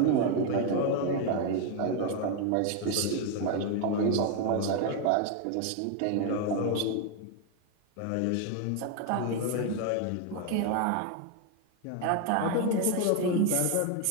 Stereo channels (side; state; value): both; different; correlation 0.01